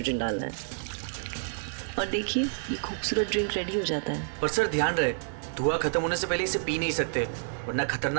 डालना है, और देखिए ये खूबसूरत ड्रिंक रेडी हो जाता है। पर सर ध्यान रहे, धुआं खत्म होने से पहले इसे पी नहीं सकते, वरना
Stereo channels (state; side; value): silent; left; digital silence